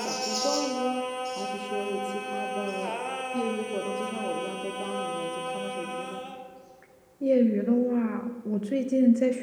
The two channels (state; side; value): identical; both; correlation 1.00